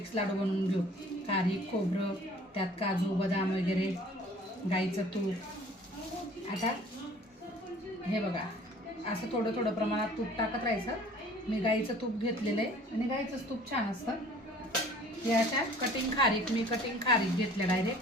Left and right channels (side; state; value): both; normal; correlation 0.51